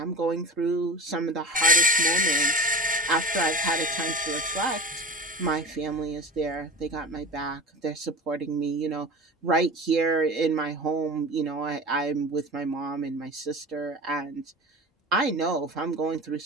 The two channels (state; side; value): normal; both; correlation 0.32